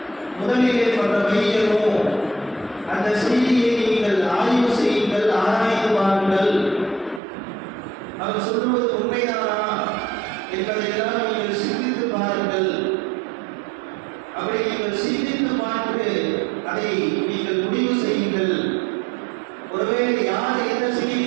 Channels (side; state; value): left; drops out; at 7.2 s